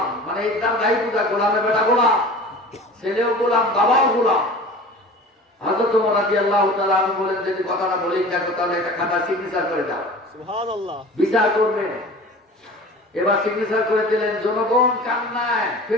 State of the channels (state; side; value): normal; both; correlation 0.40